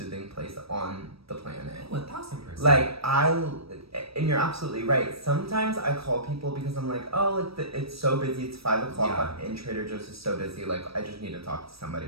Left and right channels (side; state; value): left; late; 0.76 ms